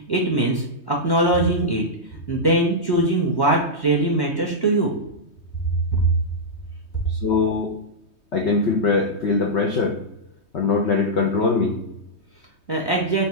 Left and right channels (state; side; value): late; right; 3.2 ms